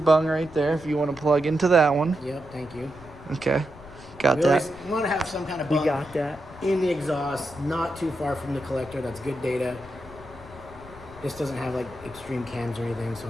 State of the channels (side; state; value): left; noise; rumble, 19 dB below the sound